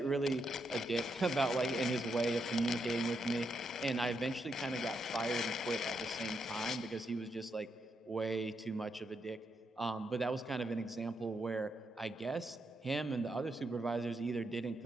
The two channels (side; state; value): both; normal; correlation 0.81